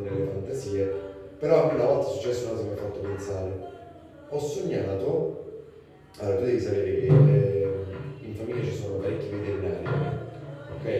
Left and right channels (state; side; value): identical; both; correlation 1.00